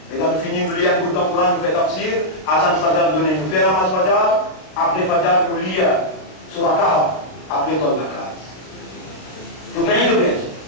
Et quand nous finissons de lire un bout dans le Coran, nous faisons tafsir, Azan Fajr donner, nous faisons Namaz Fajr, après Fajr nous lire sur la Kaaba, après Tol la case. Vous gagnez de bien.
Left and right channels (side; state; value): right; late; 32 ms